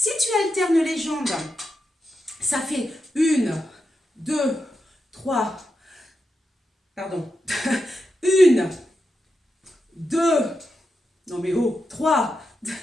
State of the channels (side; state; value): both; normal; correlation 0.87